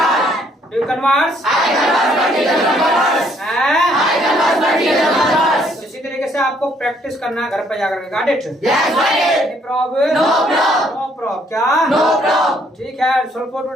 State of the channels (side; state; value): both; normal; correlation 0.67